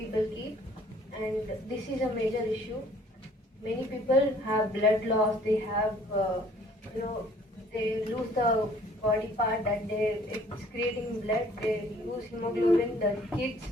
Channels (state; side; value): normal; both; correlation 0.57